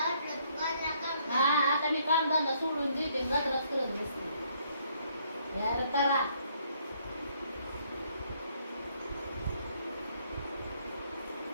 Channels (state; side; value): inverted; both; correlation -0.68